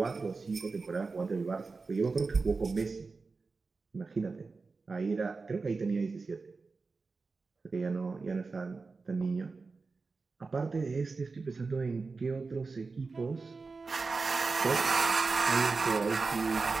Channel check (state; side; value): quieter; left; 4.2 dB